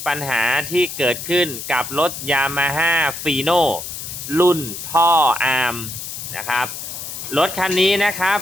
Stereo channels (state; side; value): noise; left; hiss, 8 dB below the sound